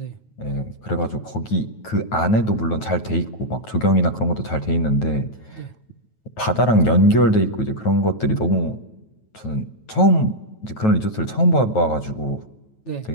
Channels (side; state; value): right; late; 9.2 ms